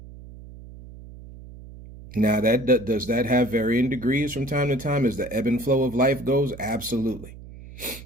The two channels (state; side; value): noise; right; hum, 16 dB below the sound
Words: Now, does that have varying degrees from time to time as the ebb and flow of life goes? Absolutely.